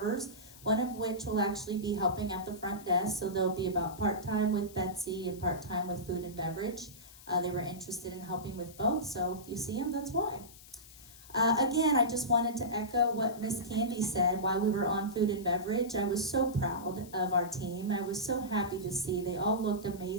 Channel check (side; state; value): left; noise; hiss, 20 dB below the sound